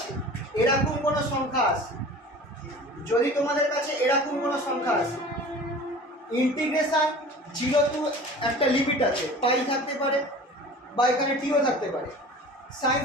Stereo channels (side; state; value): both; normal; correlation 0.41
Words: এরকম কোনো সংখ্যা আসে, যদি তোমাদের কাছে এরকম কোনো সংখ্যা আসে, ইন্টিগ্রেশন 0 টু একটা লিমিট আছে, পাই থাকতে পারে বা এখানে টিও থাকতে পারে, sine